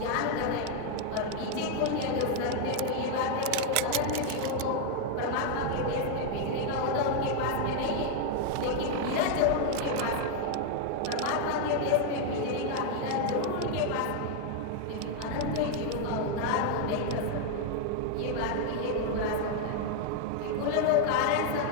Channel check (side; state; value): both; different; correlation 0.00